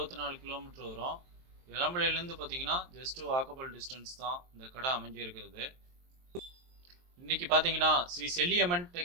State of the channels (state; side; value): late; left; 23 ms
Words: கிலோமீட்டர் வரும். எலம்பலையிலேருந்து பார்த்தீங்கன்னா ஜஸ்ட்டு வாக்கபிள் டிஸ்டன்ஸ் தான் இந்த கடை அமைஞ்சிருக்கிறது. இன்னைக்கு பார்த்தீங்கன்னா ஸ்ரீ செல்லியம்மன்